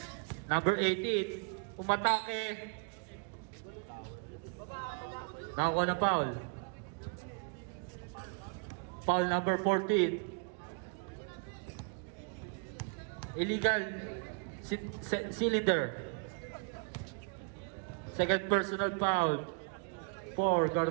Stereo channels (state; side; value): quieter; left; 38.0 dB